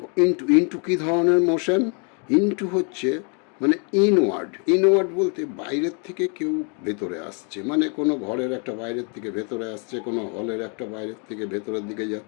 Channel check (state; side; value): quieter; right; 37.5 dB